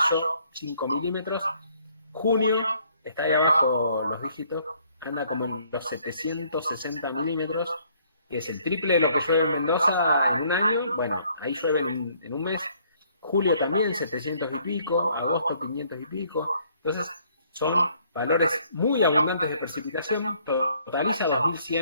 5 milímetros. Junio, está ahí abajo los dígitos, anda como en los 760 milímetros, que es el triple de lo que llueve en Mendoza en un año. Bueno, ahí llueve en un mes. Julio también, 700 y pico, agosto 500 y pico. Entonces, son valores muy abundantes de precipitación, totaliza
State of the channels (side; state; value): both; inverted; correlation -0.64